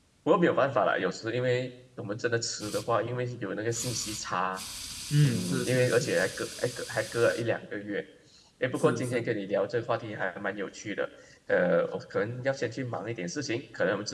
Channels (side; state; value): both; identical; correlation 1.00